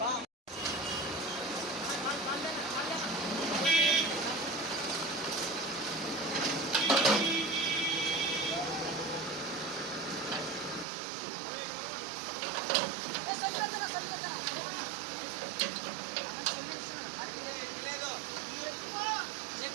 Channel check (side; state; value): left; drops out; at 10.9 s